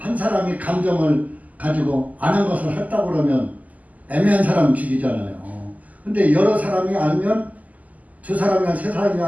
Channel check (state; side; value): late; left; 0.077 ms